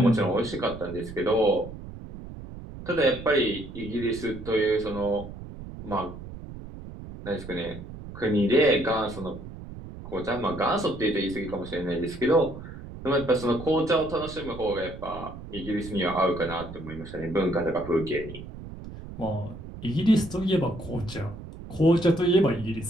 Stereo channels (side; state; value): right; noise; rumble, 12 dB below the sound